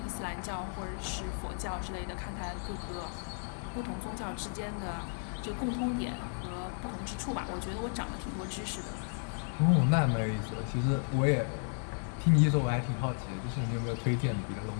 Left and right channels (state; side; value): silent; right; 55 dB below the other